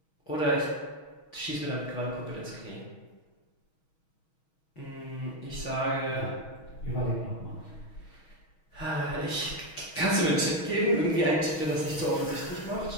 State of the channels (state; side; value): late; right; 6.3 ms